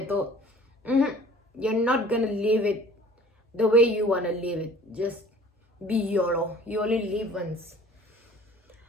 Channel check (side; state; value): both; normal; correlation 0.49